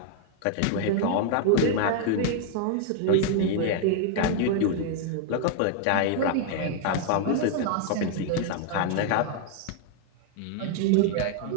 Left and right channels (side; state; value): both; different; correlation 0.00